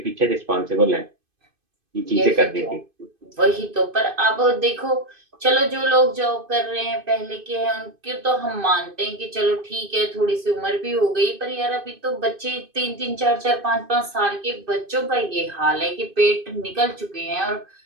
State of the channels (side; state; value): left; late; 2.5 ms